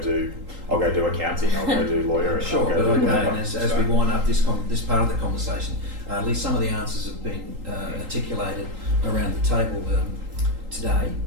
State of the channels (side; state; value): left; late; 3.8 ms